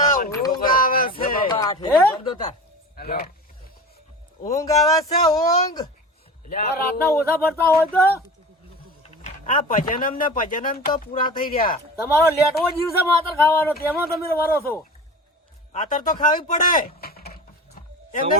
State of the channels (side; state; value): both; normal; correlation 0.34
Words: ઊંઘ આવે છે હે? ઊંઘ આવે છે ઊંઘ આ રાતના ઓછા ભરતા હોય તો આ ભજનમ ને ભજનમ તો પૂરા થઈ રહ્યા તમારો લેટવો જીવ છે માતર ખાવાનો તેમાં તમે વરો છો આતર તો ખાવી પડે એમને